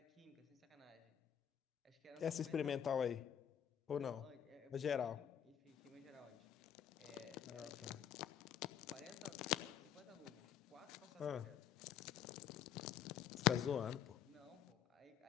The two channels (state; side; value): quieter; right; 9.4 dB